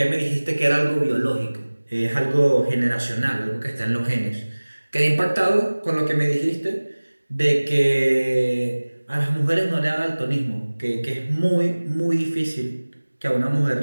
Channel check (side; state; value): both; inverted; correlation -1.00